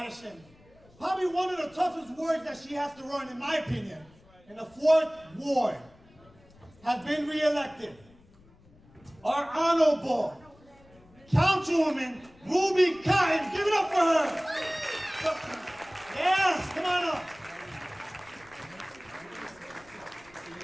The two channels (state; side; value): noise; left; rumble, 27 dB below the sound